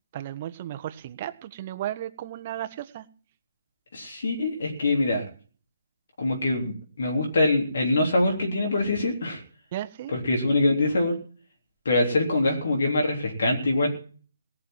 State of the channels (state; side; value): inverted; both; correlation -0.78